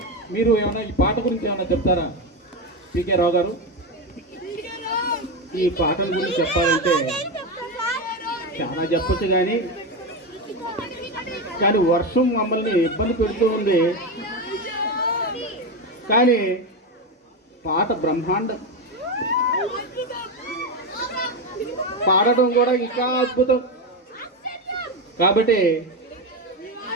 మీరు ఏమైనా ఈ పాట గురించి ఏమైనా చెప్తారా పీకే రావు గారు? ఈ పాటల గురించి చెప్పాలంటే చాలా చెప్పొచ్చు, కానీ వర్షం మమ్మల్ని ఇబ్బంది పెడుతూ ఉంది. కానీ పాట బ్రహ్మాండం, పాడటం కూడా ఇంకా అద్భుతం. కాబట్టి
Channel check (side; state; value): both; normal; correlation 0.14